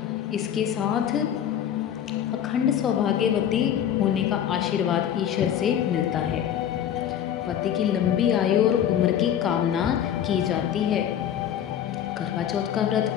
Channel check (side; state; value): right; quieter; 9.8 dB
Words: इसके साथ अखंड सौभाग्यवती होने का आशीर्वाद ईश्वर से मिलता है। पति की लंबी आयु और उम्र की कामना की जाती है। करवा चौथ का व्रत